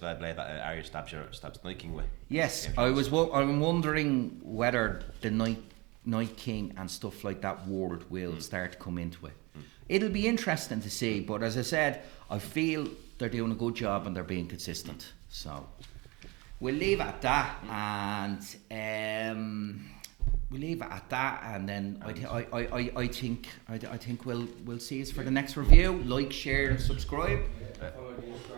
blade that Arya stabs Night King with. yes, I'm wondering whether the Night King and stuff like that world will start to come into it. It'll be interesting to see, but as I said, I feel they're doing a good job and they're being consistent. So we'll leave it at that, and then I think we'll see us for the next review. Like, share, and subscribe. Follow the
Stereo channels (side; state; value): left; quieter; 25.2 dB